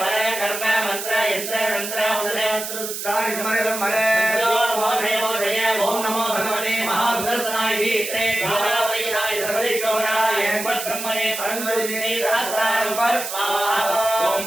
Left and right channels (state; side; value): noise; right; hiss, 6 dB below the sound